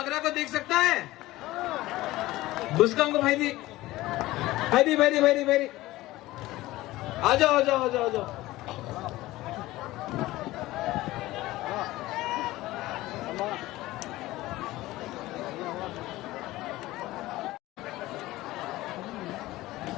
को देख सकता है? बुस्कम को भाई आ जाओ।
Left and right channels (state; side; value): quieter; right; 17.7 dB